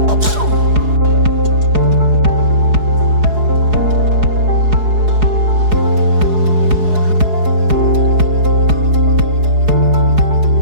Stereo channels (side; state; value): left; late; 4.8 ms